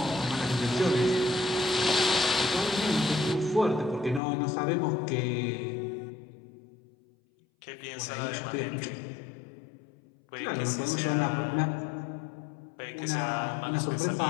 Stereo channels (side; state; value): right; drops out; at 4.2 s